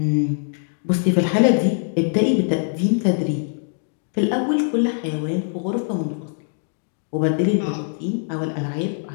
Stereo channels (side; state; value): right; silent; digital silence